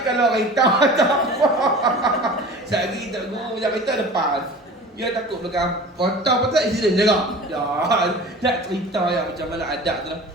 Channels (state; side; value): normal; both; correlation 0.39